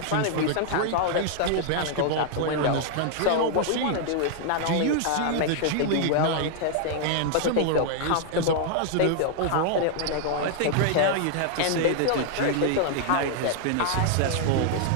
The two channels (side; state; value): both; different; correlation 0.00